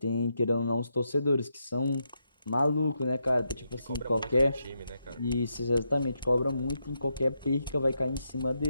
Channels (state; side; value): inverted; both; correlation -0.82